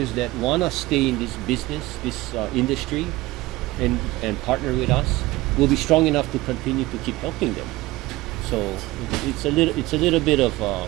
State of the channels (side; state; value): left; quieter; 19.1 dB